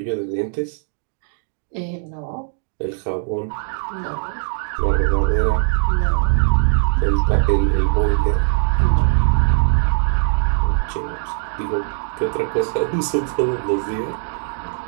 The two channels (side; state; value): left; silent; digital silence